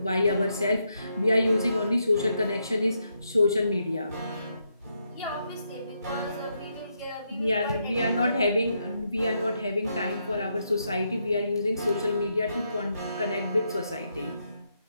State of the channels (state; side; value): inverted; both; correlation -0.79